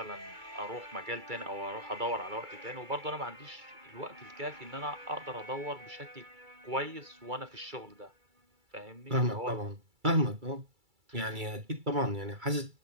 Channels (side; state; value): left; late; 2.3 ms